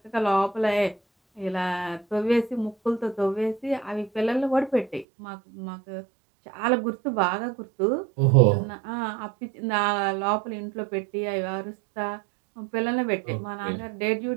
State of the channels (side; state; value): left; drops out; at 5.1 s